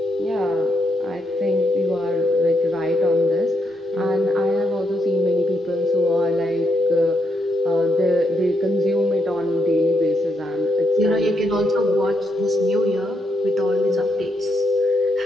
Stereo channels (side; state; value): both; normal; correlation 0.79